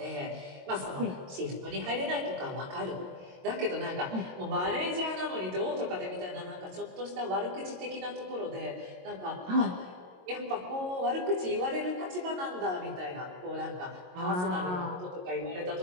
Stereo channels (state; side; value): late; left; 22 ms